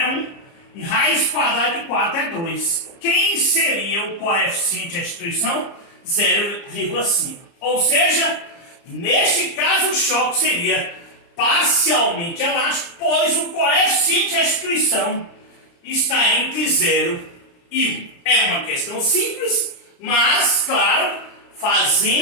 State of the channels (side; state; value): right; late; 30 ms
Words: 1, e raiz quadrada de 4 é 2. Quem seria o coeficiente de restituição? 0,5. Ou seja, neste caso o choque seria parcialmente elástico, pois o coeficiente de restituição está entre 0 e 1. É uma questão simples, mas, claro,